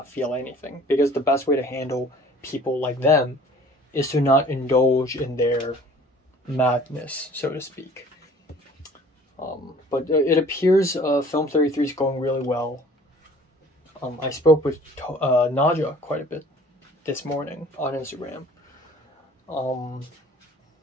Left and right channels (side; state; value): both; normal; correlation 0.50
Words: feel anything, because the best way to handle people like them is to not indulge in their madness, so to speak. But it appears Film 33 is going really well. I spoke with Naja quite a bit this morning on Instagram. So